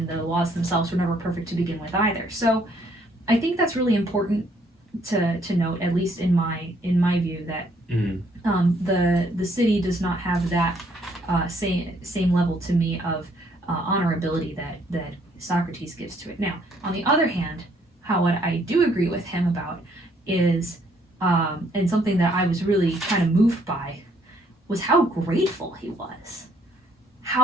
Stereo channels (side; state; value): both; normal; correlation 0.66